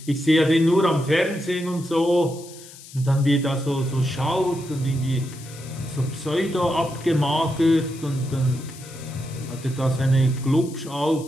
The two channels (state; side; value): noise; left; hiss, 18 dB below the sound